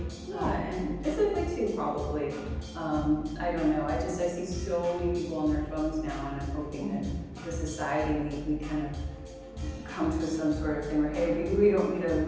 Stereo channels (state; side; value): identical; both; correlation 1.00